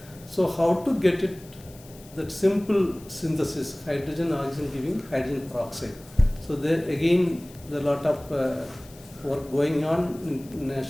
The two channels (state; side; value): noise; left; hiss, 22 dB below the sound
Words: So how to get it, that simple synthesis, hydrogen, oxygen giving hydrogen peroxide. So there again, there are a lot of work going on